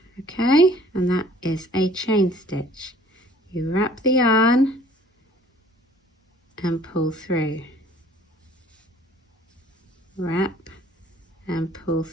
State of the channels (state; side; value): normal; both; correlation 0.54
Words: okay? And that is a chain stitch. You wrap the yarn and pull through. Wrap and pull